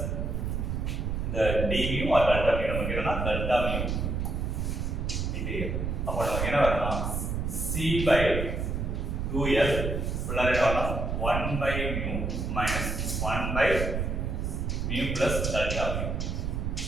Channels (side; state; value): right; noise; rumble, 1 dB below the sound